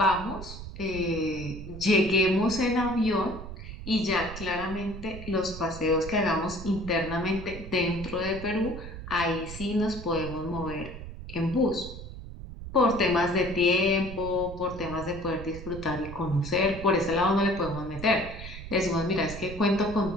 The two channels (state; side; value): noise; right; rumble, 11 dB below the sound